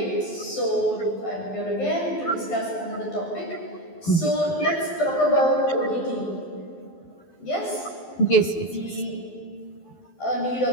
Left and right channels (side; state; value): right; late; 12 ms